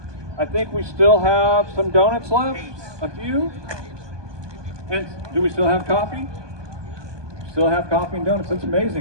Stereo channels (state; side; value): late; left; 1.2 ms